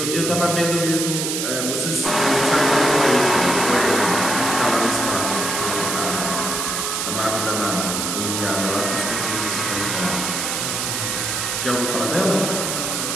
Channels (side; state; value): right; noise; hiss, 1 dB below the sound